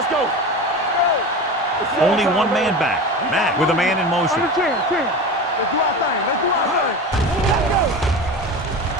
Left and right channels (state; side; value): normal; both; correlation 0.29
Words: go. Only one man back. Matt with a man in motion. Let's do our thing.